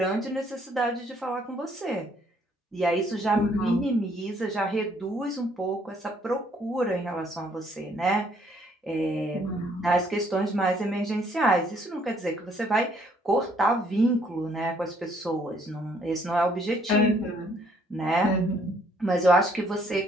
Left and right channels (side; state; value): both; normal; correlation 0.65